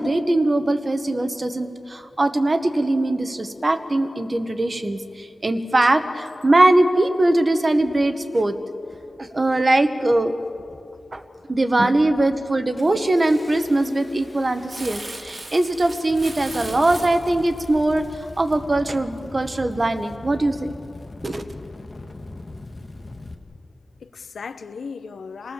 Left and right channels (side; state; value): both; normal; correlation 0.97